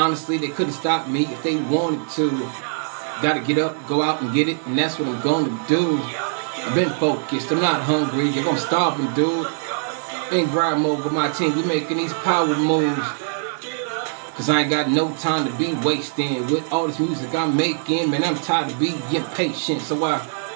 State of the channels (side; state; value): left; silent; digital silence